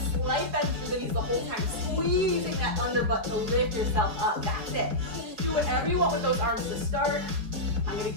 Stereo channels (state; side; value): late; left; 4.6 ms